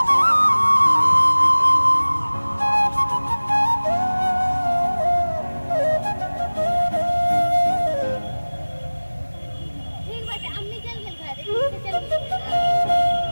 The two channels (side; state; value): both; inverted; correlation -1.00